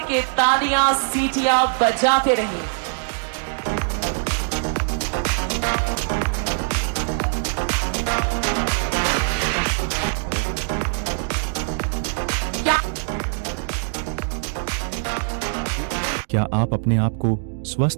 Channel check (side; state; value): left; silent; digital silence